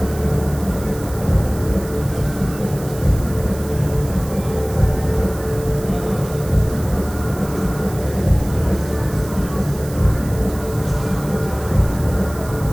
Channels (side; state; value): right; noise; hiss, 16 dB below the sound